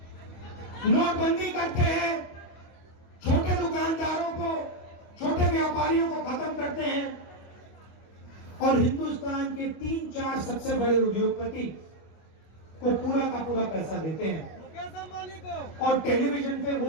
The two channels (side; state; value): right; late; 24 ms